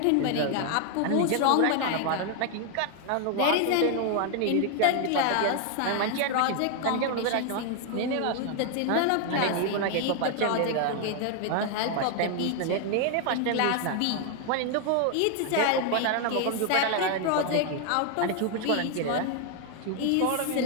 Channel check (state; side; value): different; both; correlation 0.00